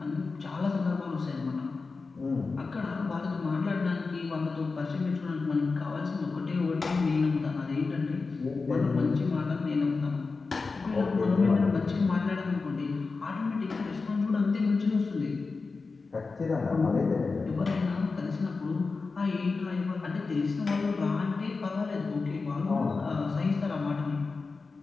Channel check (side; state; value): right; quieter; 4.2 dB